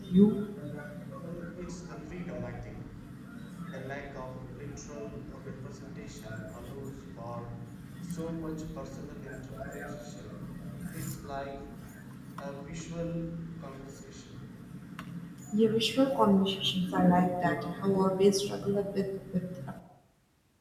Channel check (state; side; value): identical; both; correlation 1.00